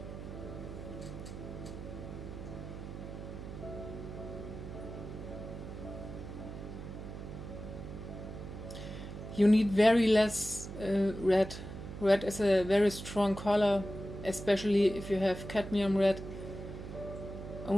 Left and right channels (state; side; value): noise; right; hum, 9 dB below the sound